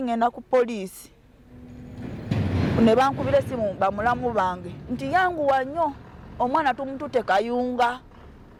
ngenda ku poliisi ne bankubira essimu bamulamu bange nti yanguwa nnyo omwana tumututte kayunga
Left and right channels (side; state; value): both; identical; correlation 1.00